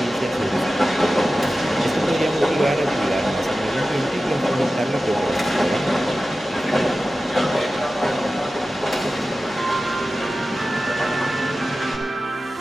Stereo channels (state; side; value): normal; both; correlation 0.94